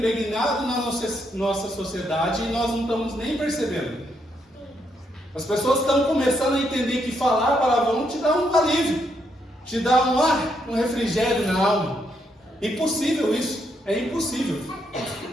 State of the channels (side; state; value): both; normal; correlation 0.77